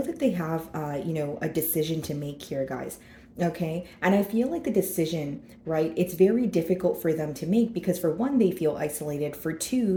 that they have, a decision to make here, guys. Okay. And I feel like the decision, right, it's very difficult for them to make because, for one, they feel isolated. For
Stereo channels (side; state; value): both; identical; correlation 1.00